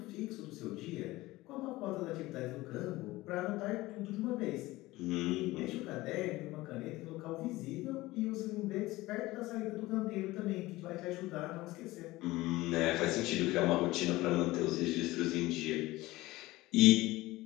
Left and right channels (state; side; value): quieter; right; 18.9 dB